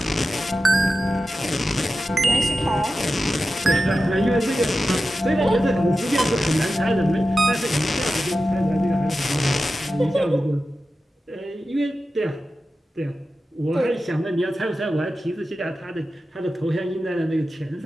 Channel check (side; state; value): both; normal; correlation 0.93